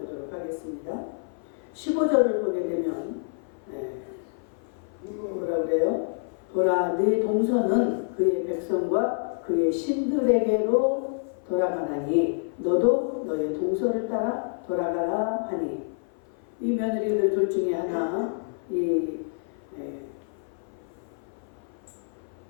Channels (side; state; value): right; silent; 55 dB below the other